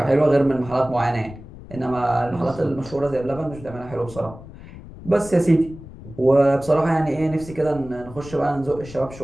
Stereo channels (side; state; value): left; noise; rumble, 16 dB below the sound